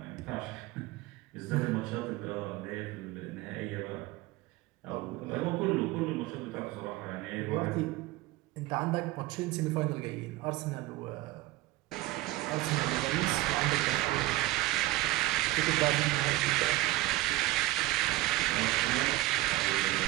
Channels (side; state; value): left; quieter; 17.9 dB